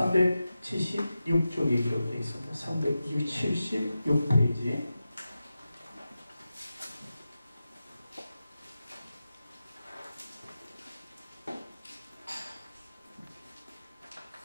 기록되어 있습니다. 376페이지.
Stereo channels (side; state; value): both; inverted; correlation -0.93